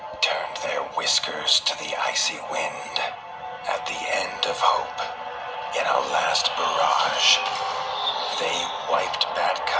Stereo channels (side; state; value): both; identical; correlation 1.00